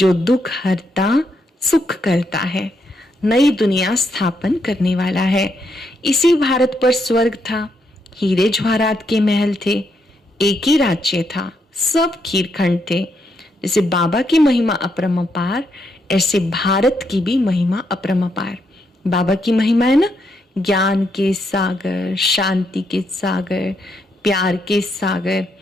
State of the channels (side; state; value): both; normal; correlation 0.78